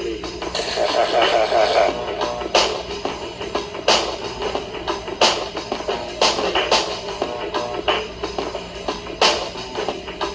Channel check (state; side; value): identical; both; correlation 1.00